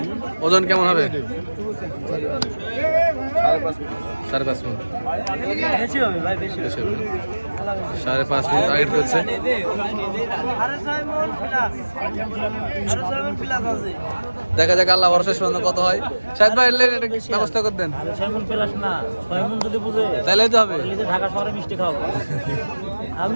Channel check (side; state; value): both; inverted; correlation -1.00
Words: ওজন কেমন হবে? 5.5 মন। বেশি হবে ভাই, বেশি হবে। 5.5 মন টার্গেট করছে। আরে 6 মন প্লাস, আরে 6 মন প্লাস আছে। দেখা যাক আল্লাহ ভরসা শেষ পর্যন্ত কত হয়। শাহেদ ভাই এলে এটা ব্যবস্থা করে দেন। আরে 6 মন প্লাস না, 6 মন যদি বুঝে তাইলেই তো হবে। তাহলে ঢাকা শহরে মিষ্টি খাওয়াবো।